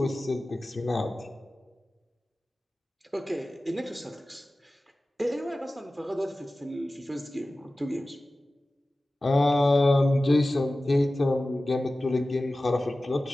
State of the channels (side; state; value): both; normal; correlation 0.96